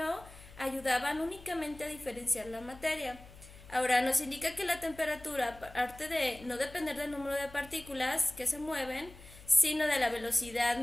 ayudaban únicamente a diferenciar la materia. Ahora, nos indica que la temperatura, aparte de no depender del número de partículas que se mueven, sino de la velocidad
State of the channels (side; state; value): left; noise; hum, 19 dB below the sound